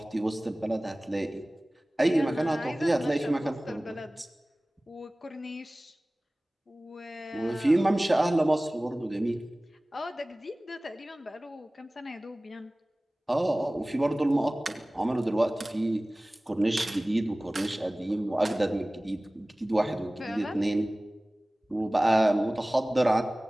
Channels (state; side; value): normal; both; correlation 0.98